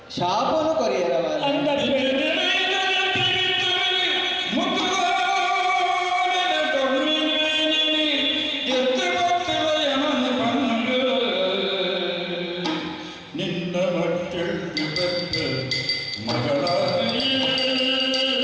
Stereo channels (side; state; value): both; identical; correlation 1.00